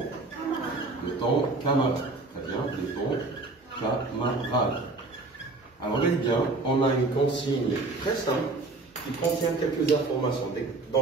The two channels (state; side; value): quieter; left; 3.4 dB